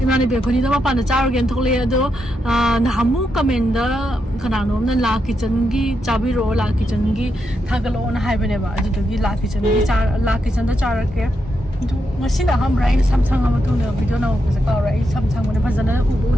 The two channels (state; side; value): normal; both; correlation 0.83